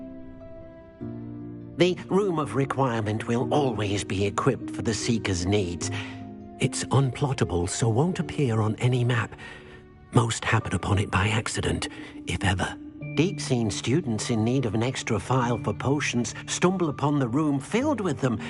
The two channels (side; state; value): both; identical; correlation 1.00